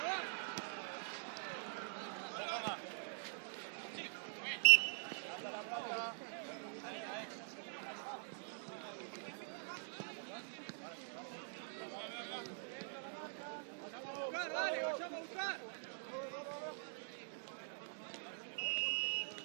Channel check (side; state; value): left; silent; digital silence